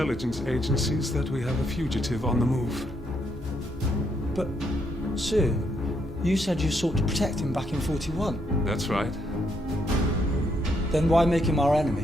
agencies that we have a fugitive on the move. But, sir, you said you sought to protect him back in 41. That's right. Then why make him our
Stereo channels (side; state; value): both; normal; correlation 0.75